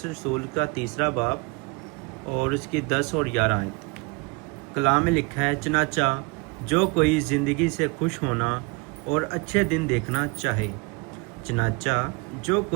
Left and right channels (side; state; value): left; quieter; 28.9 dB